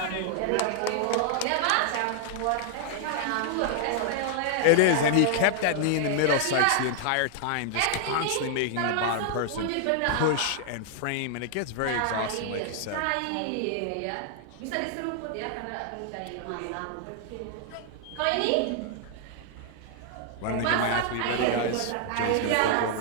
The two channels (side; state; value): both; different; correlation 0.00